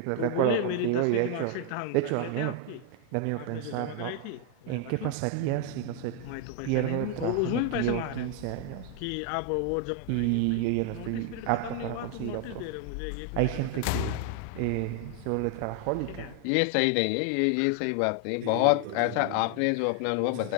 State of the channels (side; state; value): both; different; correlation 0.00